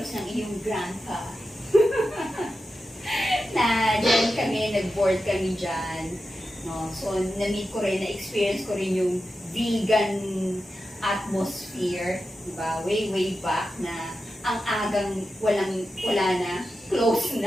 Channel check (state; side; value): normal; both; correlation 0.91